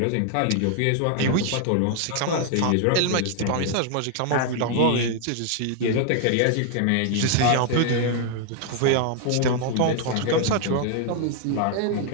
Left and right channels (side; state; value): both; different; correlation 0.00